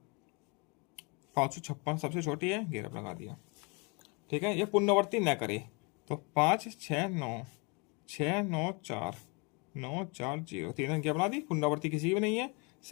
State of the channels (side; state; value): right; quieter; 31.4 dB